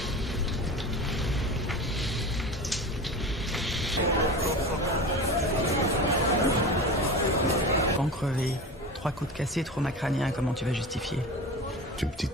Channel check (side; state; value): both; normal; correlation 0.31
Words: Crevé, 3 coups de cassé, trauma crânien, comment tu vas justifier? C'est une